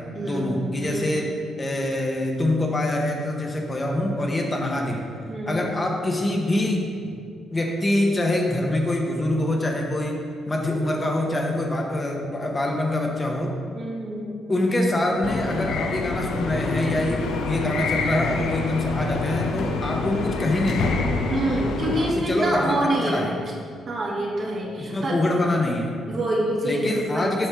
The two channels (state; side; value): normal; both; correlation 0.81